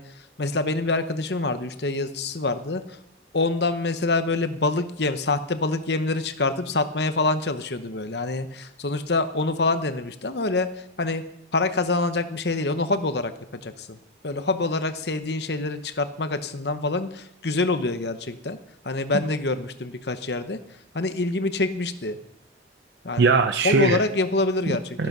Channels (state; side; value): normal; both; correlation 0.06